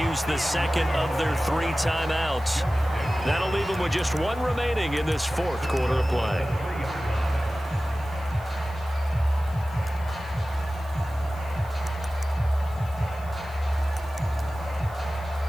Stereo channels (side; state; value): left; noise; hiss, 24 dB below the sound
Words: use the second of their 3 timeouts. That'll leave them with just 1 remaining in this 4th quarter of play.